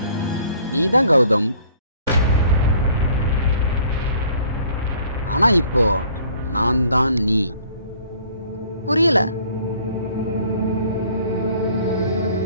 நீதான் கௌதம். ஆனா இப்போ நான் தான் நீ. புரியல.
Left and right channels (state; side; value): inverted; both; correlation -0.56